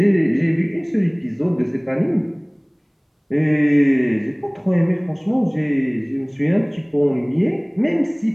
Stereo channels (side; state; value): both; identical; correlation 1.00